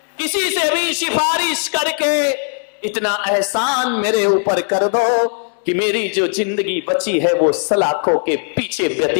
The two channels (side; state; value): right; silent; 56 dB below the other